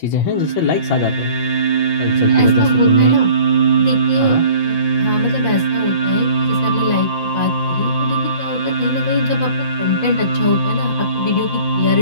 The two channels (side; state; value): right; late; 5.9 ms